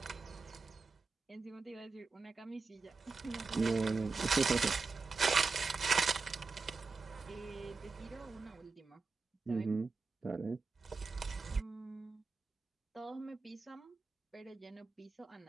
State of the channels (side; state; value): left; quieter; 4.2 dB